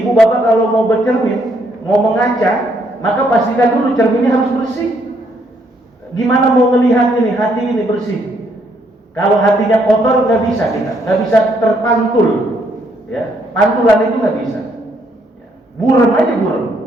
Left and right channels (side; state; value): both; normal; correlation 0.71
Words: bapak kalau mau bercermin, mau mengaca, maka pastikan dulu cerminnya harus bersih. Gimana mau melihat ini hati ini bersih? Kalau hatinya kotor nggak bisa kita, nggak bisa terpantul. Ya, pantulan itu nggak bisa. Burem aja